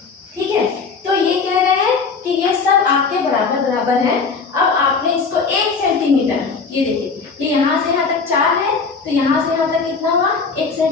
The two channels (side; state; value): right; quieter; 4.9 dB